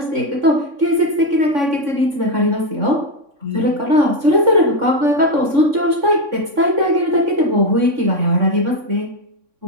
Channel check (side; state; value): left; late; 3.6 ms